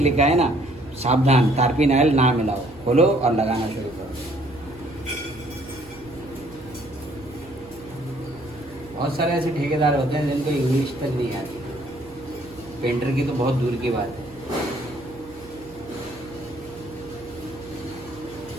है ना सावधान, तारपिनाइल ना मिलाओ, खोलो और लगाना शुरू करो। बहुत सारे ऐसे ठेकेदार होते हैं जिनको इंग्लिश तक नहीं आती, पेंटर की तो बहुत दूर की बात है।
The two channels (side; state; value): right; noise; hum, 21 dB below the sound